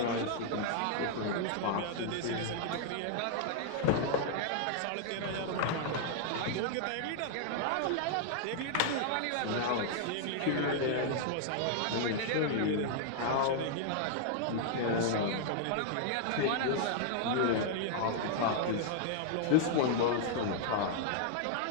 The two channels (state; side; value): different; both; correlation -0.01